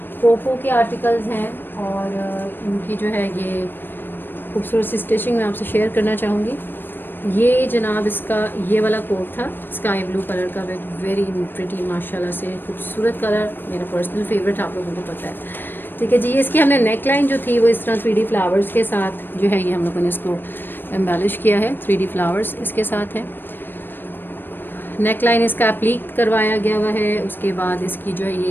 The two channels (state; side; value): late; right; 0.096 ms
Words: पोपो के आर्टिकल्स हैं और इनकी जो है ये खूबसूरत सी स्टिचिंग मैं आपसे शेयर करना चाहूँगी। ये जनाब इसका ये वाला कोट था स्काई ब्लू कलर का, विद वेरी प्रिटी माशाल्लाह से खूबसूरत कलर, मेरा पर्सनल फेवरेट, आप लोगों को पता है। ठीक है जी, ये इसकी हमने नेक लाइन जो थी वो इस तरह 3D फ्लावर्स के साथ जो है ये हम लोगों ने इसको एम्बेलिश किया है। 3D फ्लावर्स इसके साथ है। नेक लाइन इसका एप्लीक करवाया गया हुआ है। उसके बाद इसकी जो है